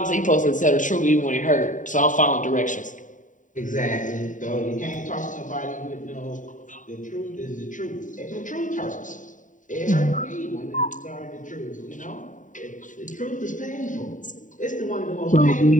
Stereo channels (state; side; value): late; right; 0.37 ms